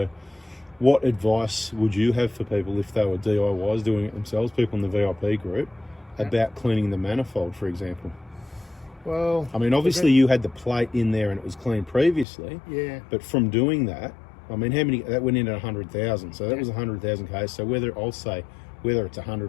what advice would you have for people if they were DIYs doing it themselves, people in the VIP group, about cleaning the manifold, for example? Well, I mean, obviously you had the plate in there and it was clean previously. Yeah. But from doing that, I mean, that went in at 100,000. So that was 100,000 Ks. So whether it's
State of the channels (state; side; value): drops out; right; at 12.2 s